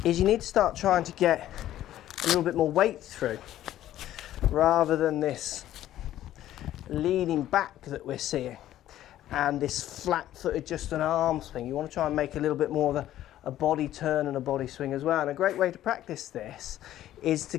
is you need to start trying to get a little bit more weight through rather than this leaning back that we're seeing and this flat-footed just an arm swing. You want to try and make a little bit more of a body turn and a body swing as well. And a great way to practice this is to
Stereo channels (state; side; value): quieter; right; 13.0 dB